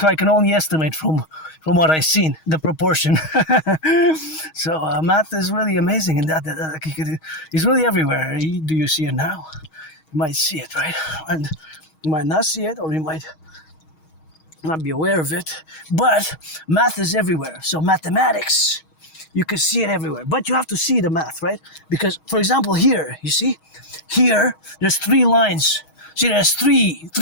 I can only estimate from what I've seen, the proportion. So math is really amazing in that it's really everywhere. Do you see it now? You might see it, right? And you might not see it, or you might not be aware of it. But math is everywhere. So mathematics, you can see it everywhere. But you have to see the math, right? Because, for example, here, you see? Here, there's 3 lines. See, there's three.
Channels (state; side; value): late; right; 6.3 ms